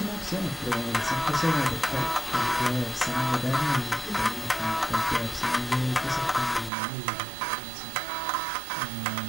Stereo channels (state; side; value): drops out; left; at 6.7 s